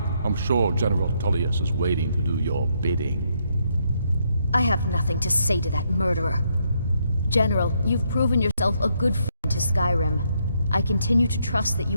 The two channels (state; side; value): inverted; both; correlation -0.75